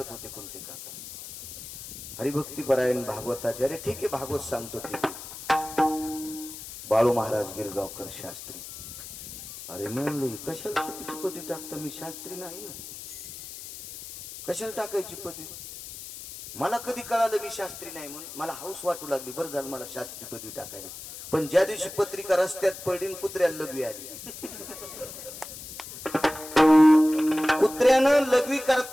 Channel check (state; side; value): noise; left; hiss, 12 dB below the sound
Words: होते कोणते काका, हरिभक्तीपरायण भागवताचे. अरे ठीक आहे, भागवत सांगतो ठीक आहे. बाळू महाराज गिरगावकर शास्त्री. अरे म्हणलं कशाला चुकीची पदवी टाकता, मी शास्त्री नाही ना, कशाला टाकायची पदवी. मला कधी कळालं मी शास्त्री नाही म्हणून, मला हौस वाटू लागली. बरं झालं मला शास्त्री पदवी टाकायला. पण ज्या दिवशी पत्रिका रस्त्यात पडली, कुत्र्याला लघवी आली. कुत्र्यानं लघवी